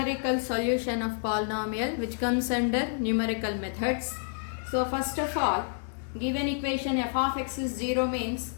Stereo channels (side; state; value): right; silent; 59 dB below the other